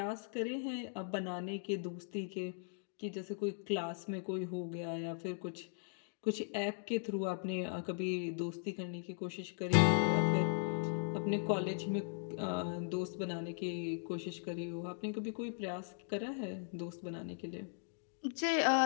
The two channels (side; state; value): right; silent; digital silence